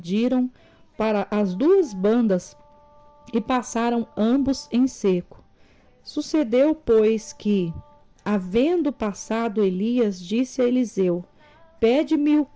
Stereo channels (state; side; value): identical; both; correlation 1.00